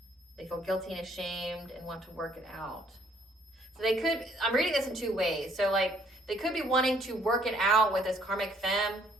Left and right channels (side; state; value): both; normal; correlation 0.63